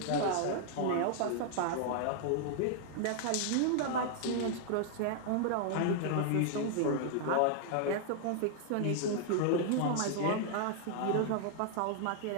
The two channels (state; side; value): different; both; correlation -0.01